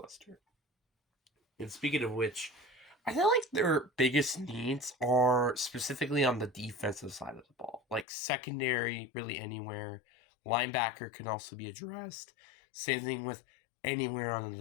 And speaking of which, I feel like their biggest needs are specifically on the defensive side of the ball. Like secondary, really anywhere. Linebacker can also be addressed. Same thing with anywhere on the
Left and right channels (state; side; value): drops out; right; at 8.1 s